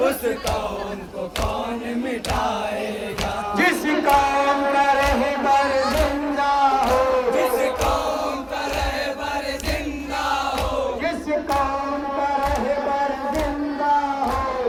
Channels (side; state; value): both; identical; correlation 1.00